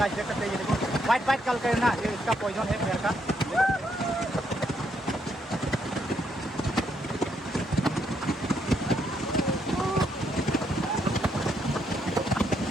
देख सकते हैं ये देखो वाइट वाइट कल कर ना, ये इसका पॉइजन है पैर का।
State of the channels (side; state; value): both; normal; correlation 0.76